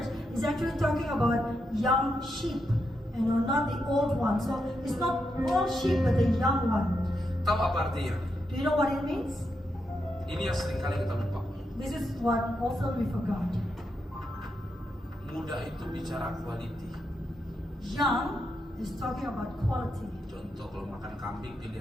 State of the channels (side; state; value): both; normal; correlation 0.84